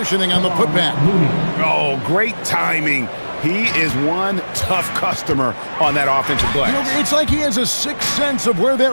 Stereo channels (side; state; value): both; inverted; correlation -1.00